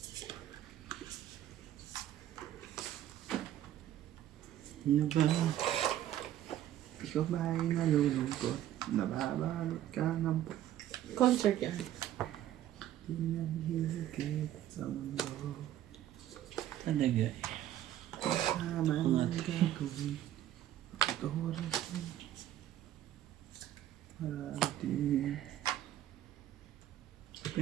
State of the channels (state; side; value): quieter; left; 12.3 dB